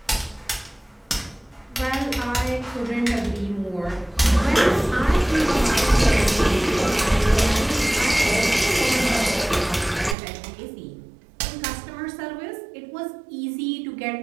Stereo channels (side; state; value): left; drops out; at 10.2 s